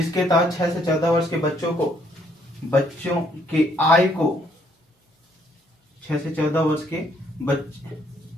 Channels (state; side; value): normal; both; correlation 0.68